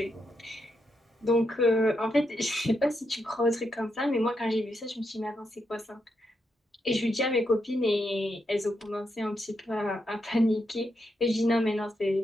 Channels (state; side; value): normal; both; correlation 0.82